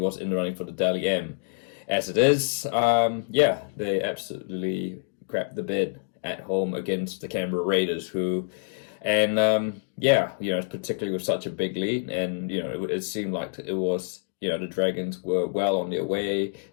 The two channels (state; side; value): silent; right; 60 dB below the other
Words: in the running for the Daly M. As it is, they absolutely crapped the bed at home against the Canberra Raiders, particularly with such a big lead, and it seemed like it was the Dragons were well on their way.